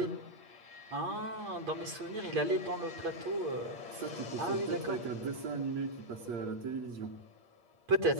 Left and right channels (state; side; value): late; left; 8.5 ms